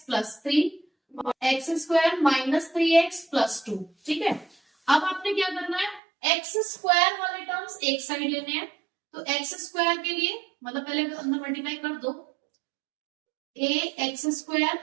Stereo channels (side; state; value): left; drops out; at 6.0 s